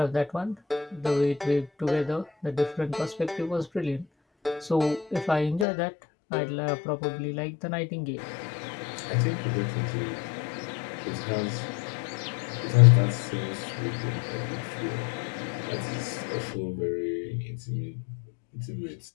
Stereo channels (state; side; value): drops out; right; at 5.7 s